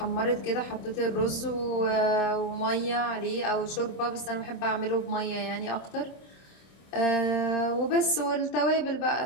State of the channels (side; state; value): right; late; 26 ms